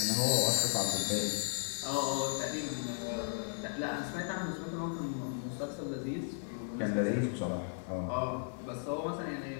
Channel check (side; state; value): right; silent; digital silence